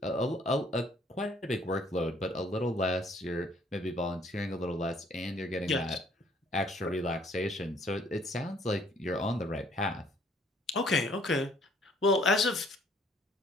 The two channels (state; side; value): normal; both; correlation 0.61